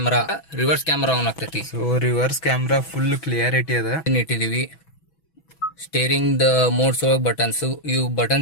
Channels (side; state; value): right; late; 6.1 ms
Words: ಆನ್ ಆಗ್ತೈತಿ. So reverse camera full clarity ಅದ ಇಟ್ಟಿದೀವಿ. ಸ್ಟೇರಿಂಗ್ ದ ಮೋಡ್ಸ್ ಒಳಗೆ ಬಟನ್ಸ್, ಇವು